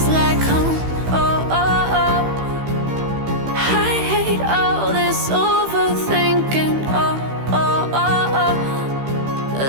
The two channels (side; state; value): left; late; 15 ms